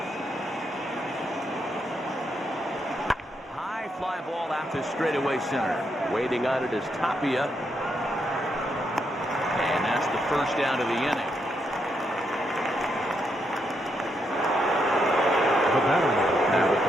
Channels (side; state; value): both; normal; correlation 0.79